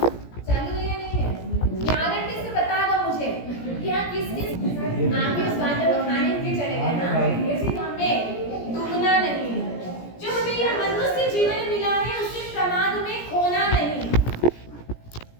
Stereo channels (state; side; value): late; right; 17 ms